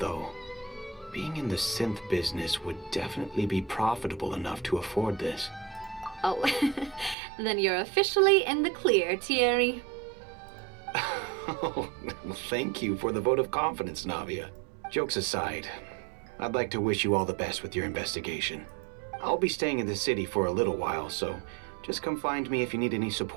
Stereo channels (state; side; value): drops out; left; at 7.2 s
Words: being in the synth business would definitely be profitable enough to afford this. Oh, then you're officially in the clear, Thierry. Oh, well, thank you for the vote of confidence, Navia. Jokes aside, I'd like to wish you all the best with your investigation. I'll be staying in the city for a little while, so just come find me if you need any